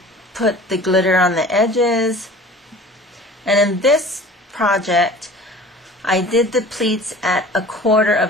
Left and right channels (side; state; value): both; normal; correlation 0.43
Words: put the glitter on the edges. And in this project, I did the pleats at 1/4